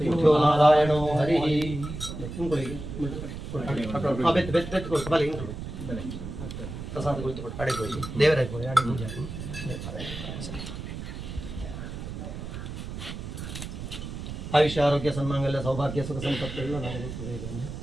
नारायणो हरिः प्रसाद कुಳಿತುಕೊಂಡು ಕಡೆ ಹೋಗಿ ದೇವರ ಪೂಜೆ आयुष्य आरोग्य सन्मांगल्य सौभाग्य सुख संपत्ति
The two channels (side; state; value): right; noise; rumble, 8 dB below the sound